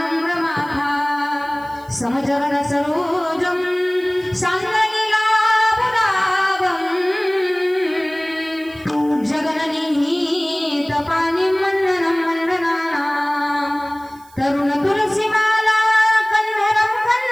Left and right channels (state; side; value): noise; right; hiss, 27 dB below the sound